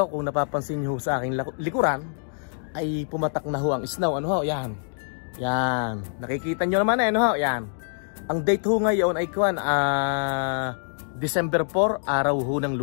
kung napapansin nyo sa aking likuran, ay pumatak na ho ang snow. Ano ho? Yan. Yan. Nakikita nyo naman Yan. Ang date ho ngayon ay December 4, araw ho ng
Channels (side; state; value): right; silent; digital silence